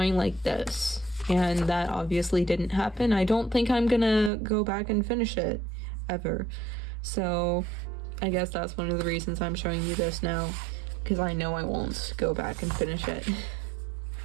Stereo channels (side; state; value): left; drops out; at 4.3 s